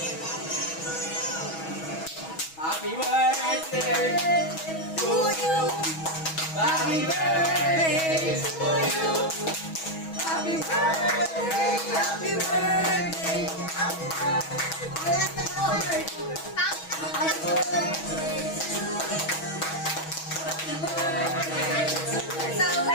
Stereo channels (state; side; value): late; right; 6.2 ms